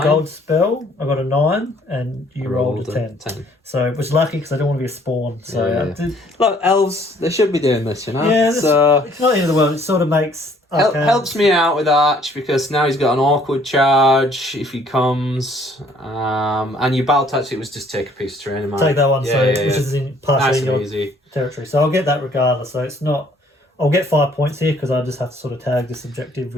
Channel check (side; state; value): both; normal; correlation 0.61